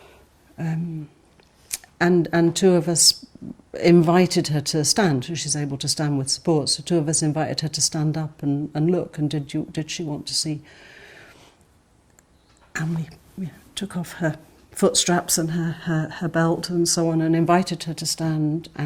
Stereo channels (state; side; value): identical; both; correlation 1.00